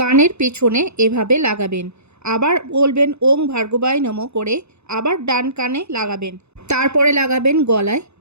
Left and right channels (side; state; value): left; late; 0.81 ms